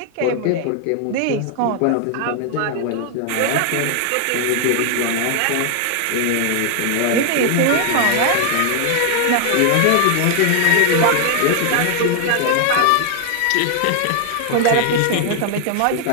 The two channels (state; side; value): different; both; correlation 0.00